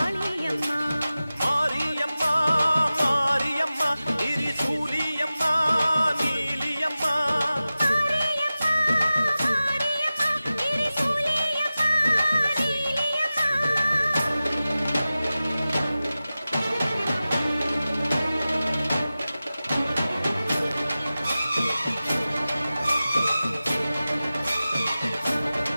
மாரியம்மா மாரியம்மா திரிசூலியம்மா நீலியம்மா. மாரியம்மா மாரியம்மா திரிசூலியம்மா நீலியம்மா.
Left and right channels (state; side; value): inverted; both; correlation -0.95